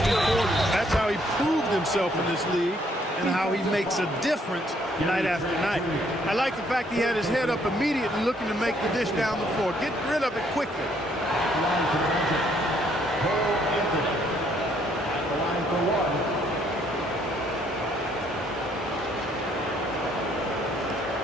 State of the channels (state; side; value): normal; both; correlation 0.67